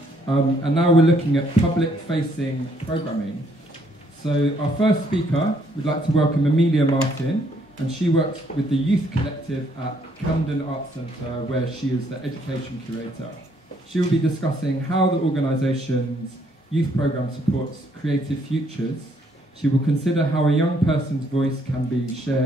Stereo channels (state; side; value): normal; both; correlation 0.68